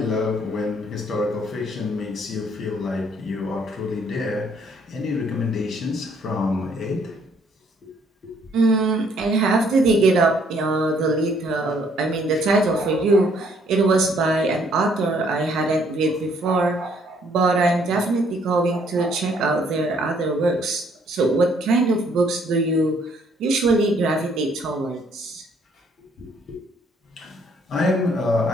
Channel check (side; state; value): both; normal; correlation 0.65